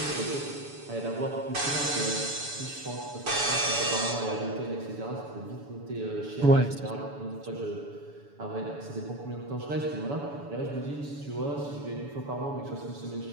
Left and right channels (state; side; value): late; left; 7.0 ms